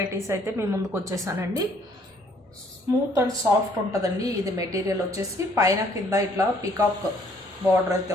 అయితే మీ ముందుకు వచ్చేసానండి. స్మూత్ అండ్ సాఫ్ట్ ఉంటుందండి. ఇది మెటీరియల్ వచ్చేసి పైన కింద ఇట్లా పికాక్ బార్డర్ అయితే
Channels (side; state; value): both; normal; correlation 0.63